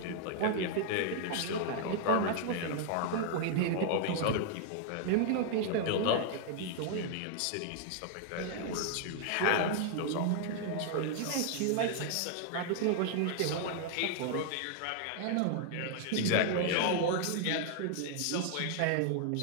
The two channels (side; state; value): both; different; correlation 0.00